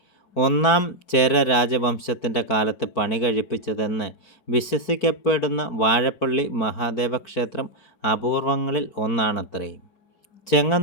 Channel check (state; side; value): late; right; 4.5 ms